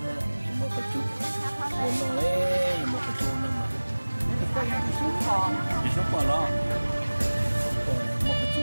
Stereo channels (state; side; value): inverted; both; correlation -1.00